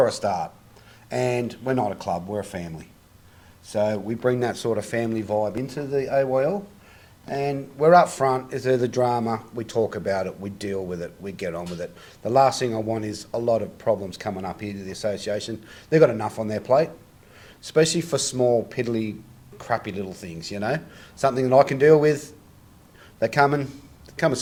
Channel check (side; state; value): both; identical; correlation 1.00